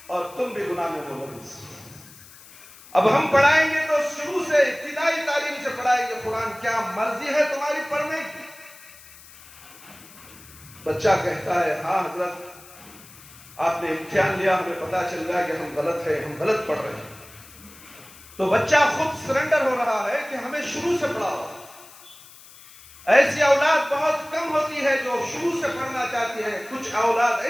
اور تم بھی گناہ میں ملوث۔ اب ہم پڑھائیں گے تو شروع سے ابتدائی تعلیم سے پڑھائیں گے قرآن، کیا مرضی ہے تمہاری پڑھنے کی؟ بچہ کہتا ہے ہاں حضرت آپ نے امتحان لیا، ہمیں پتا چل گیا کہ ہم غلط ہیں، ہم غلط پڑھ رہے ہیں، تو بچہ خود سرنڈر ہو رہا ہے کہ ہمیں شروع سے پڑھاؤ۔ ایسی اولاد بہت کم ہوتی ہے جو شروع سے پڑھنا چاہتی ہے، کچھ اولاد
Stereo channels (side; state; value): left; noise; hiss, 21 dB below the sound